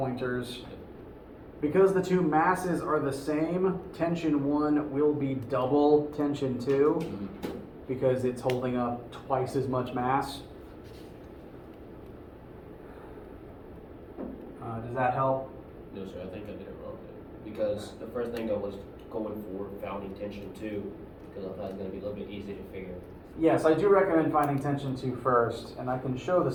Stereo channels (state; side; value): identical; both; correlation 1.00